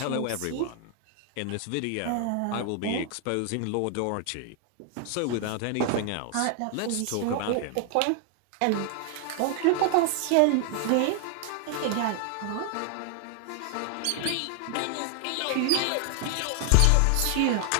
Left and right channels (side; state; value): both; different; correlation 0.00